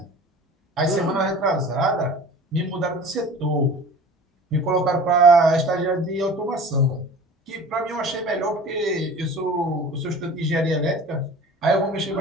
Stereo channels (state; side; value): normal; both; correlation 0.41